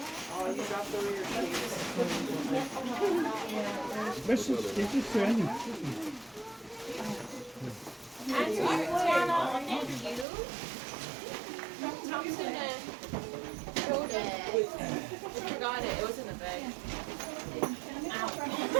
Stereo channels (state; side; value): drops out; left; at 10.2 s